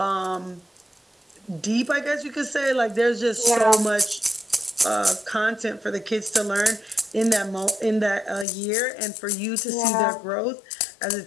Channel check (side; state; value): right; drops out; at 8.5 s